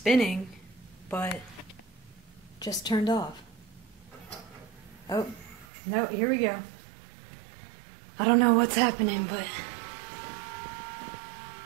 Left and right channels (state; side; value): drops out; left; at 5.7 s